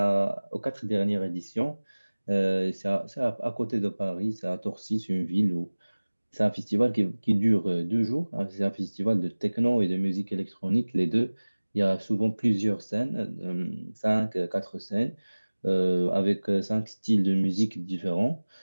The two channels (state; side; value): inverted; both; correlation -1.00